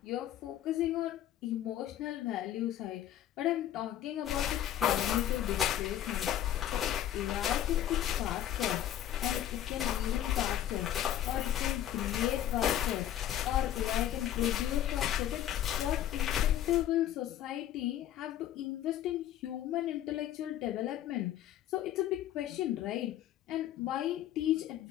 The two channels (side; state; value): right; quieter; 11.8 dB